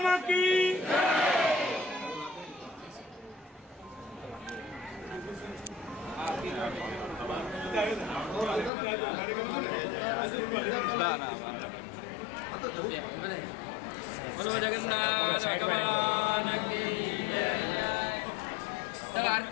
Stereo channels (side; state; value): right; drops out; at 8.7 s